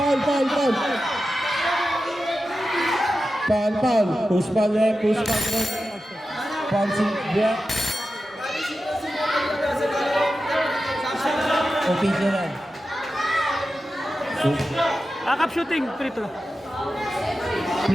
Push ball. Foul si Buak. Official. Akap shooting, free throw.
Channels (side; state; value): both; normal; correlation 0.92